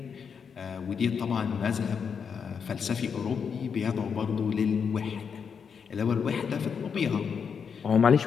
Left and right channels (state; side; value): quieter; right; 6.5 dB